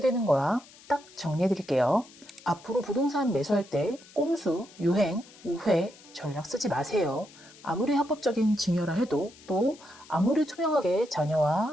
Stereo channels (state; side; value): noise; left; hiss, 23 dB below the sound